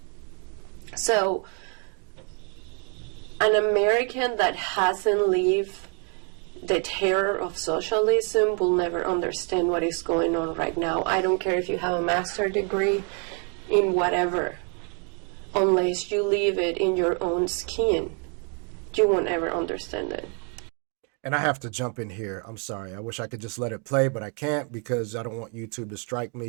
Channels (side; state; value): left; quieter; 39.1 dB